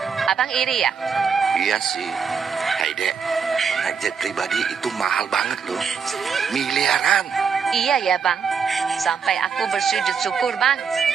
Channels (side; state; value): left; quieter; 6.2 dB